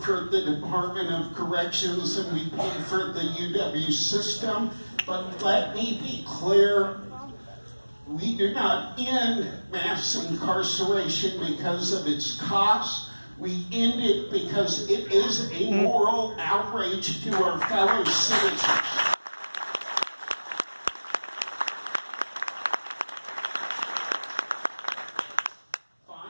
the Department of Corrections than we pay for the UW system, but let me be clear, we do not end mass incarceration because of its cost. We end it because it is a moral outrage to our fellow citizens.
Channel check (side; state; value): both; inverted; correlation -1.00